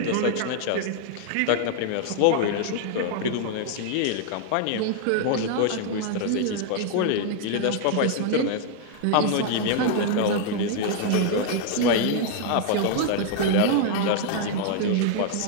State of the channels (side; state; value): both; different; correlation 0.00